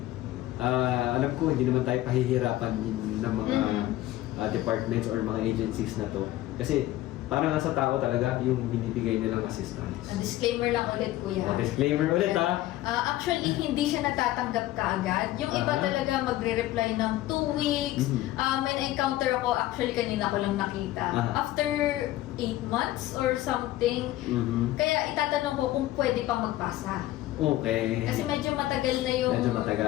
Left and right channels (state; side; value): quieter; right; 15.5 dB